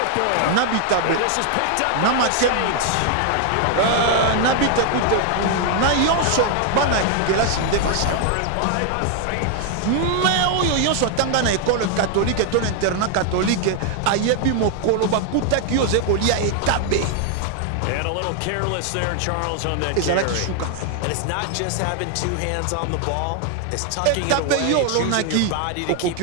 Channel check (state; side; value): different; both; correlation 0.00